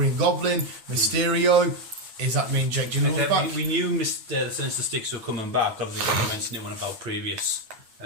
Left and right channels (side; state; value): left; late; 9.1 ms